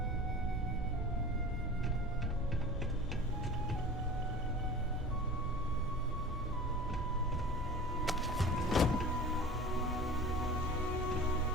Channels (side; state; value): both; normal; correlation 0.38